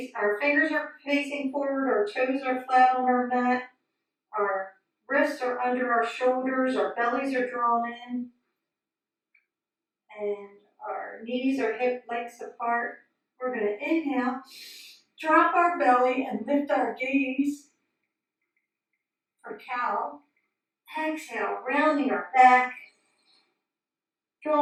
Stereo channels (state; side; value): identical; both; correlation 1.00